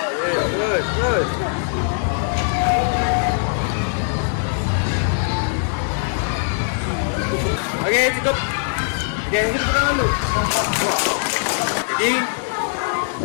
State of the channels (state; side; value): silent; right; digital silence